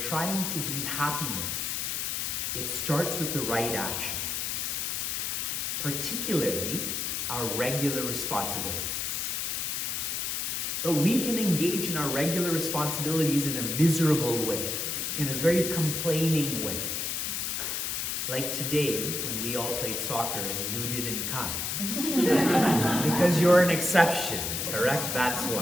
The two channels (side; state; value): left; noise; hiss, 1 dB below the sound